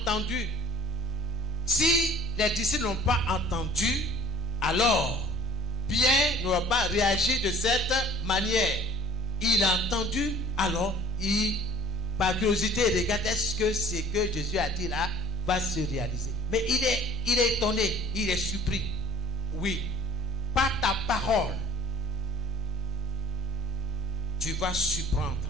Si les disciples n'ont pas entendu, alors Pierre n'aura pas réagi de cette manière. Il a entendu, alors par curiosité, il regarde, est-ce que ce que Jésus a dit là va se réaliser? Mais il est étonné, il est surpris. Oui, par ta parole, tu vas surprendre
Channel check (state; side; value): normal; both; correlation 0.58